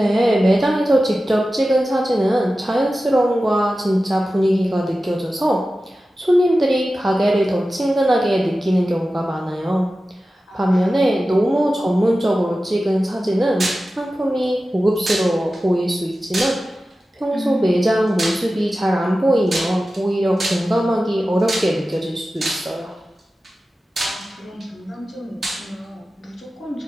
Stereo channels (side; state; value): both; normal; correlation 0.94